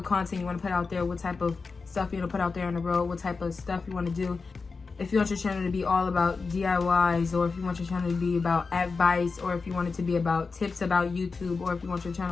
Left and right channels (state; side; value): quieter; right; 4.5 dB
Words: content you want to put out there, what type of stuff you want to put out there on the road, what type of stuff you want to do. If you want your channel to be all about DIYs, or if you want your channel to be about advice, or if you want it to be about tips about YouTube, or if you want your